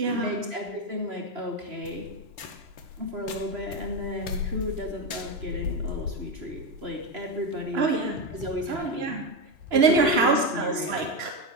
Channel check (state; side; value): late; left; 3.0 ms